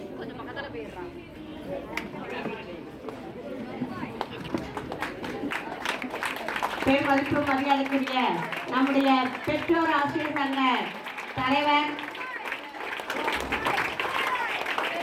கொஞ்சம் பக்கத்தில் போயிடுறான். பேர் மதிப்பு மரியாதைக்குரிய நம்முடைய பெற்றோர் ஆசிரியர் சங்க தலைவர்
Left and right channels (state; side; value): identical; both; correlation 1.00